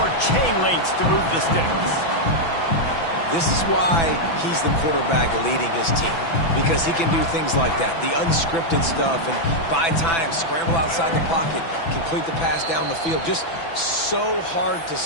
chain links to move the sticks. This is why he's the quarterback leading his team, because he can do things like that, the unscripted stuff, and buy time, scramble outside the pocket, complete the pass down the field. Just so hard to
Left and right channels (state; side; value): late; right; 6.0 ms